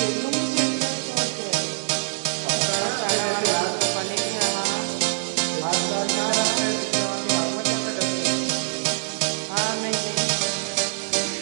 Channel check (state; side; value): silent; left; digital silence